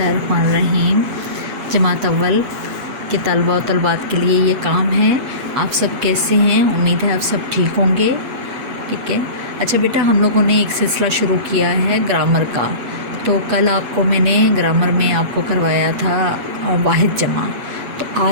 जमात अव्वल के तलबा और तलबात के लिए ये काम है। आप सब कैसे हैं? उम्मीद है आप सब ठीक होंगे। ठीक है। अच्छा बेटा, हम लोगों ने एक सिलसिला शुरू किया है ग्रामर का। तो कल आपको मैंने ग्रामर में आपको करवाया था वाहिद जमा। तो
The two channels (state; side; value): late; left; 7.1 ms